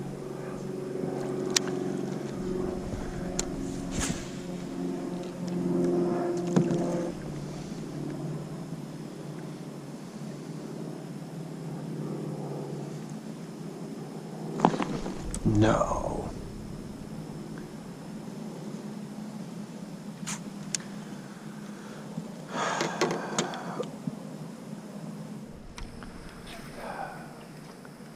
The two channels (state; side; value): identical; both; correlation 1.00